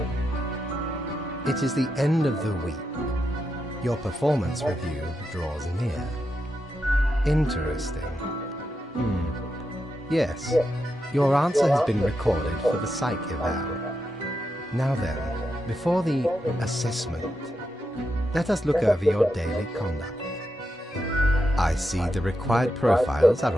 It is the end of the week. Your performance review draws near. Interesting. Yes, your answer has been recorded for the psych eval. Now then, before the assessment, let us look over your daily conduct. I see the required profiles are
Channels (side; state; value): both; normal; correlation 0.86